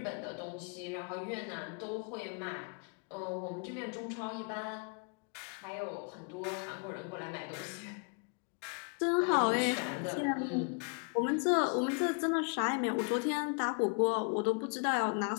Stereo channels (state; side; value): quieter; right; 38.0 dB